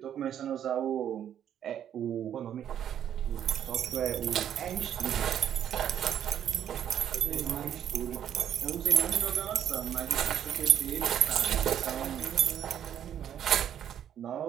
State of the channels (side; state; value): left; quieter; 9.9 dB